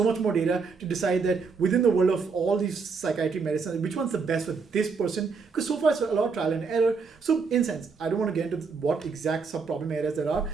much more data, to decide that within the world of all these psychiatric medicine, which one's the best for this person, because so far it's a lot of trial and error. So in a sense, I don't want to get into what exact sub-problem areas there are,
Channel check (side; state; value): left; quieter; 5.0 dB